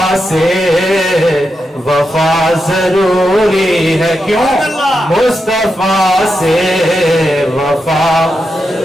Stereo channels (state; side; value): normal; both; correlation 0.87